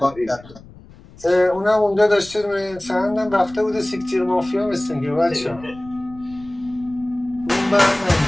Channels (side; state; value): left; noise; rumble, 21 dB below the sound